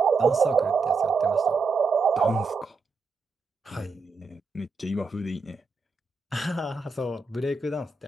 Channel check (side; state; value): left; quieter; 4.2 dB